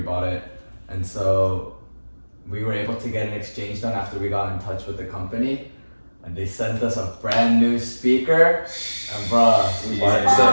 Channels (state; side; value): inverted; both; correlation -1.00